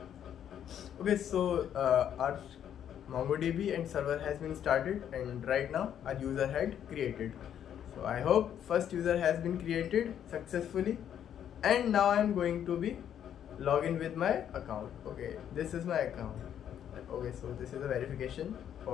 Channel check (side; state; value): right; quieter; 9.6 dB